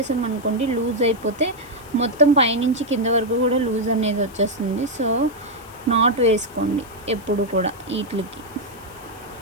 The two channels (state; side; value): noise; left; hiss, 23 dB below the sound